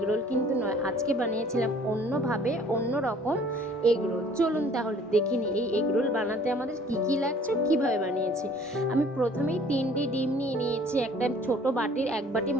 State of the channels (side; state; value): both; normal; correlation 0.54